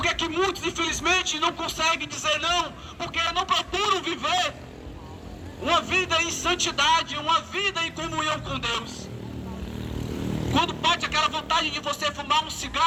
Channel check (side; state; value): both; identical; correlation 1.00